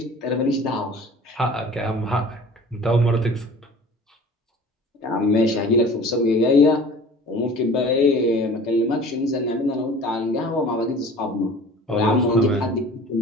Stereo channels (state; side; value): normal; both; correlation 0.44